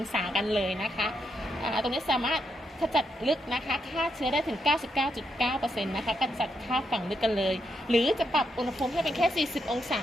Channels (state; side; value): normal; both; correlation 0.81